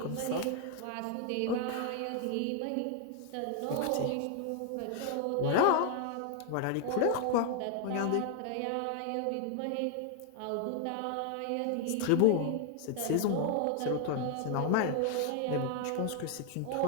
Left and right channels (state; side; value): different; both; correlation 0.00